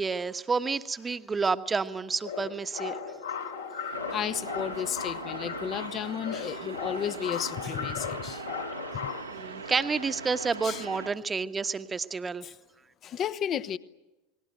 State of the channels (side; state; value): both; normal; correlation 0.56